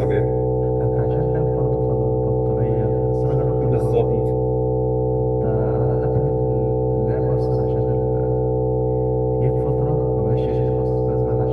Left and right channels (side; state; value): both; identical; correlation 1.00